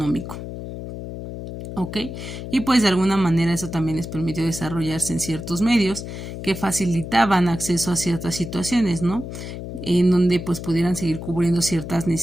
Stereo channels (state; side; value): noise; left; hum, 9 dB below the sound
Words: ¿Ok? Y pues de alguna manera eso también les permitió desarrollarse en ciertos medios que facilitaban acceso a ciertas situaciones, ¿no? En donde pues pudieran seguir cubriendo ciertas